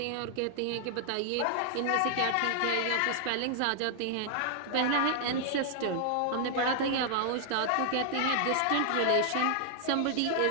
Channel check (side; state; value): both; different; correlation 0.00